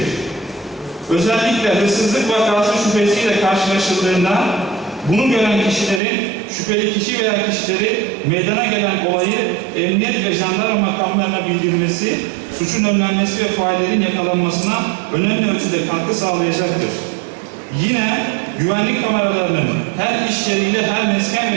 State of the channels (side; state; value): left; drops out; at 6.0 s